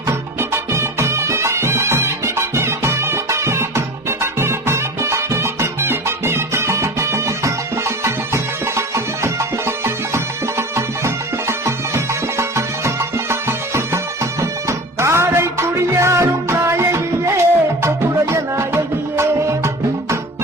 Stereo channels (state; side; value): normal; both; correlation 0.35